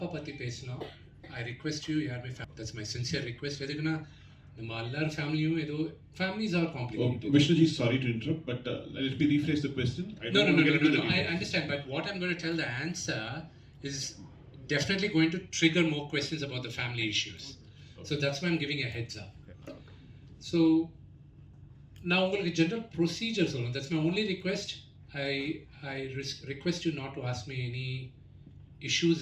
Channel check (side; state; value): both; identical; correlation 1.00